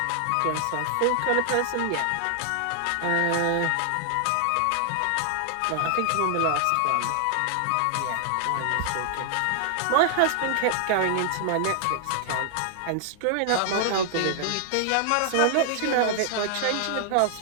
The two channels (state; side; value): different; both; correlation 0.00